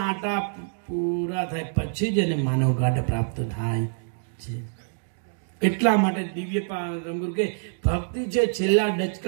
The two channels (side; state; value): left; silent; digital silence